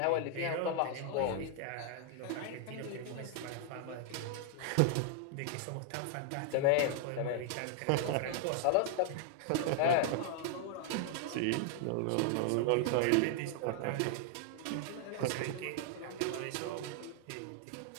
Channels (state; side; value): different; both; correlation 0.00